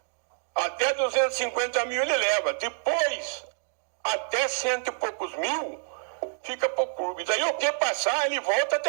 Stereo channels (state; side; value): silent; left; digital silence